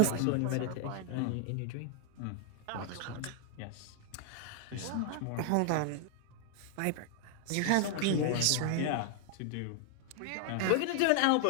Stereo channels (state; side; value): different; both; correlation 0.00